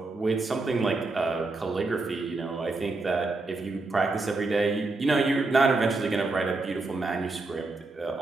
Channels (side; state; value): left; quieter; 3.4 dB